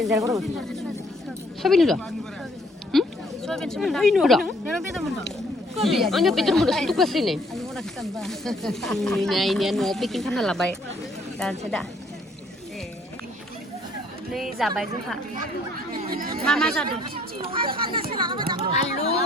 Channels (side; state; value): both; normal; correlation 0.63